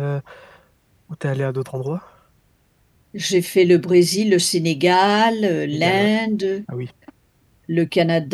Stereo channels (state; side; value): identical; both; correlation 1.00